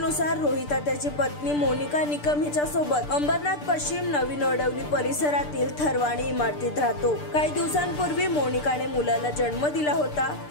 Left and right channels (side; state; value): right; late; 6.8 ms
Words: रोहिता त्याची पत्नी मोनिका निकम हिच्या सोबत अंबरनाथ पश्चिम नवीन वडवली परिसरातील थरवाणी इमारतीत राहतो। काही दिवसांपूर्वी मोनिकाने मुलाला जन्म दिला होता।